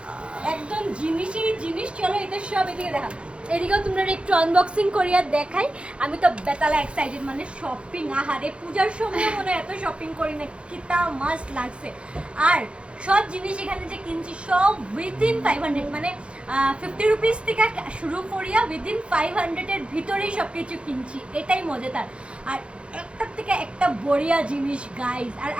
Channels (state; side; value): late; left; 0.058 ms